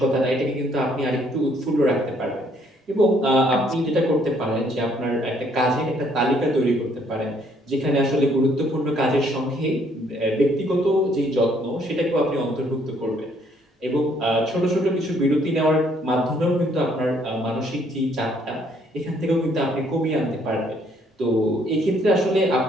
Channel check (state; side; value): normal; both; correlation 0.66